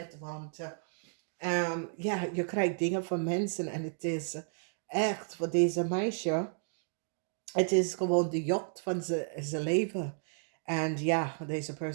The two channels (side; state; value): left; silent; digital silence